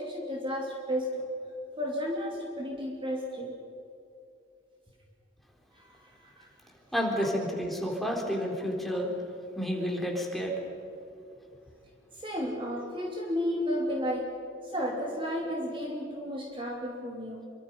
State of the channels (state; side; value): normal; both; correlation 0.56